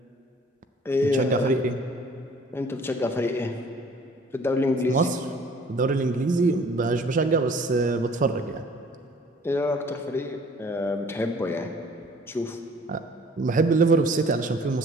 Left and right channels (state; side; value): normal; both; correlation 0.53